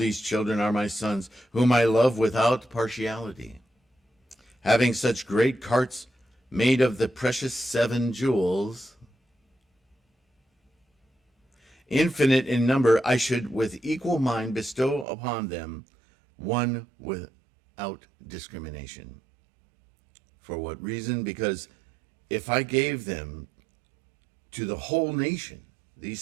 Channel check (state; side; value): drops out; left; at 15.1 s